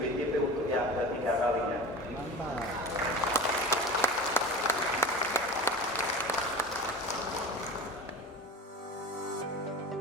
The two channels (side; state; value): both; normal; correlation 0.33